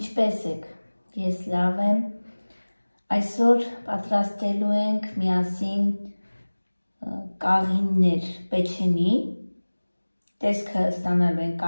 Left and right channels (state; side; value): inverted; both; correlation -1.00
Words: եք, ես լավ եմ, այսօր պատրաստելու ենք միասին կաղիններ պեչենի, տեսքը ստանալու ենք